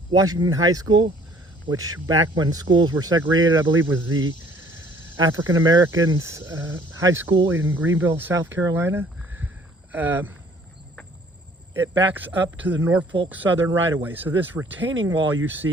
Washington High School, which back when schools were segregated, I believe was the African Americans high school in Greenville, South Carolina. It backs up to the Norfolk Southern right-of-way. So this retaining wall you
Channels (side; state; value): both; normal; correlation 0.57